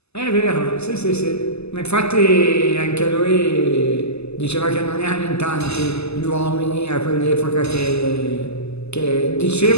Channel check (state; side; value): late; right; 0.79 ms